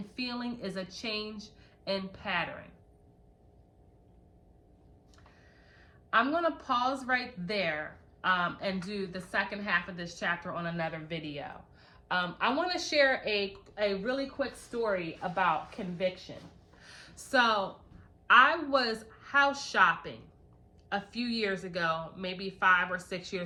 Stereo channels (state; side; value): identical; both; correlation 1.00